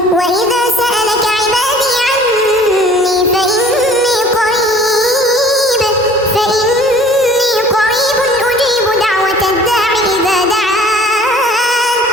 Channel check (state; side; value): normal; both; correlation 0.50